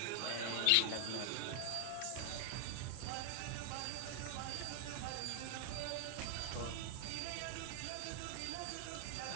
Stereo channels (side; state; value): both; different; correlation 0.00